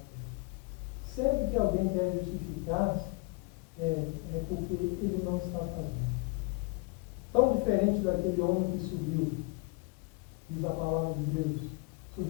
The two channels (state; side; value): quieter; right; 28.8 dB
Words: Deus. Sempre que alguém quer justificar-se, é porque ele não está fazendo. tão diferente daquele homem que subiu. Diz a palavra de Deus.